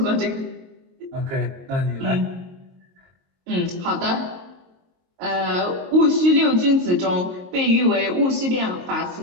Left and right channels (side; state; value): left; late; 22 ms